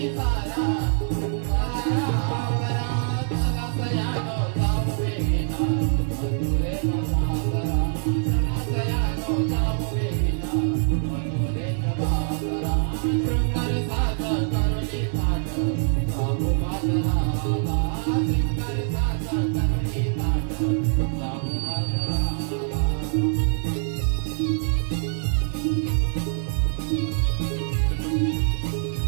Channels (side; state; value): left; silent; 59 dB below the other